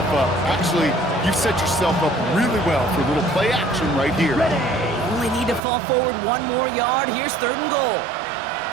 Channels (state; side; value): drops out; left; at 5.6 s